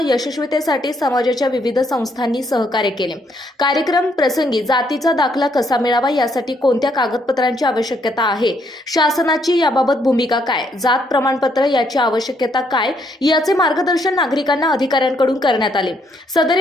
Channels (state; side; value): normal; both; correlation 0.72